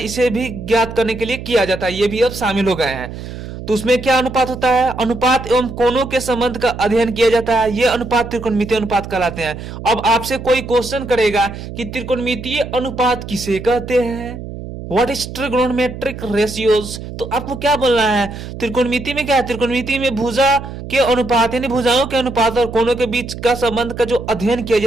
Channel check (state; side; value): noise; right; hum, 10 dB below the sound